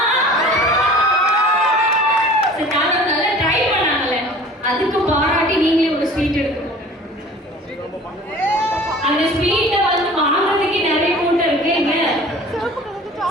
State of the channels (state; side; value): normal; both; correlation 0.45